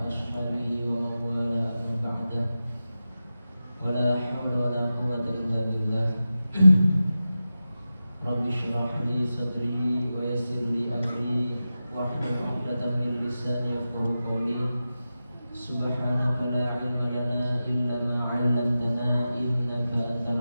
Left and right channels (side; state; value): both; inverted; correlation -0.93